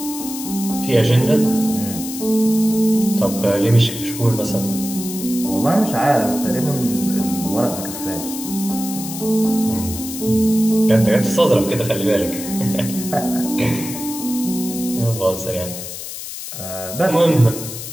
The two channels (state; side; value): noise; left; hiss, 9 dB below the sound